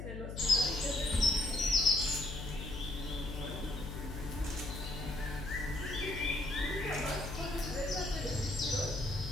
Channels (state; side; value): noise; left; hum, 7 dB below the sound